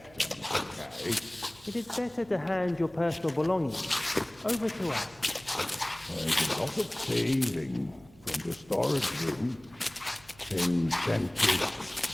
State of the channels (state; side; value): noise; right; hum, 26 dB below the sound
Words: okay? It is better to hand your personal belongings over to us. There's a lot of thieving from the storage room. Things tend to